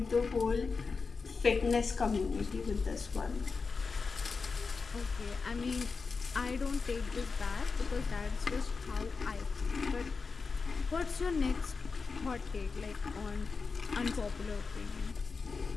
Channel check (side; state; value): right; quieter; 4.7 dB